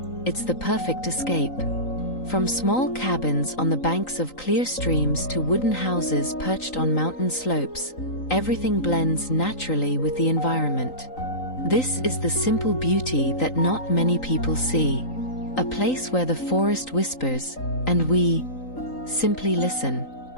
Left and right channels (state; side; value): late; right; 3.9 ms